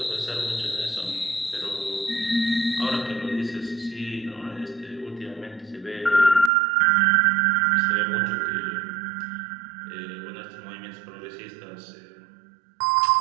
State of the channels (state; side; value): drops out; left; at 6.5 s